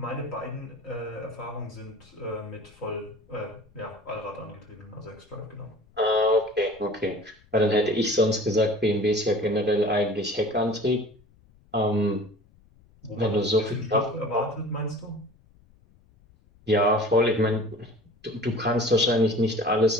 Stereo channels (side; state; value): left; noise; rumble, 29 dB below the sound